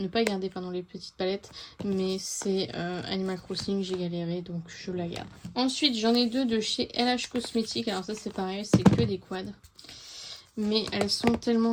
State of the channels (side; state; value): both; identical; correlation 1.00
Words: pas garder pardon les petites palettes. Mais c'est Animal Crossing, j'ai galéré, donc je la garde. Ensuite j'en ai deux de chez LH Cosmetics. Alors ça c'est pareil, c'est que des quads, mais elles sont